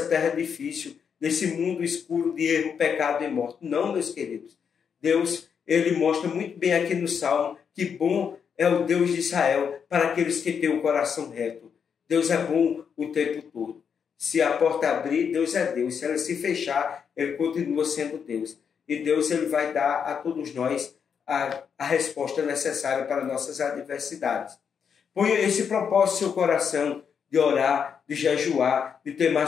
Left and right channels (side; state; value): right; quieter; 7.0 dB